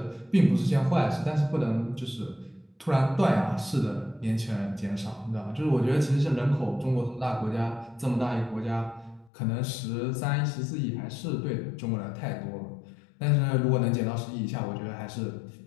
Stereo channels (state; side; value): drops out; right; at 9.3 s